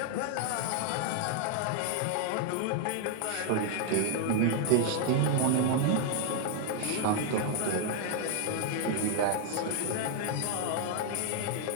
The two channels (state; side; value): different; both; correlation 0.00